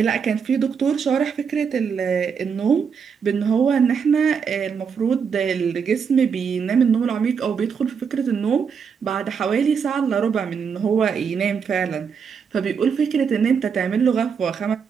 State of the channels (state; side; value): quieter; left; 6.4 dB